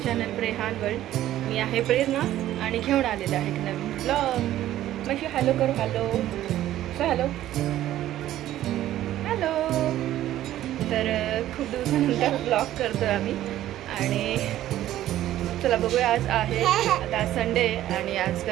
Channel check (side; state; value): left; quieter; 13.4 dB